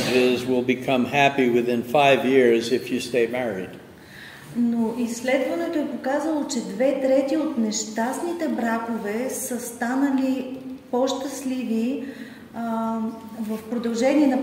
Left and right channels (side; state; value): both; identical; correlation 1.00